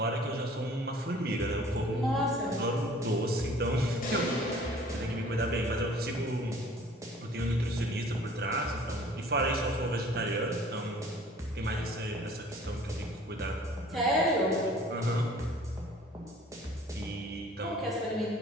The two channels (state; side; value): normal; both; correlation 0.51